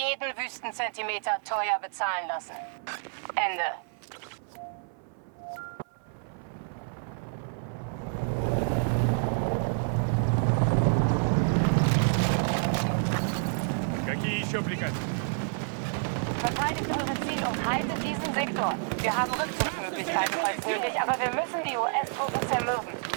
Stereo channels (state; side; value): silent; left; 59 dB below the other